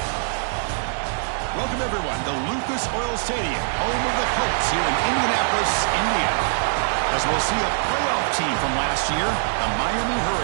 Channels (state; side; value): silent; left; 63 dB below the other